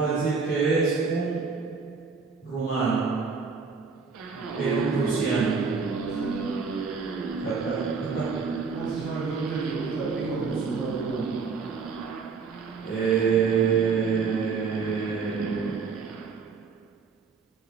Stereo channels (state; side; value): quieter; left; 5.1 dB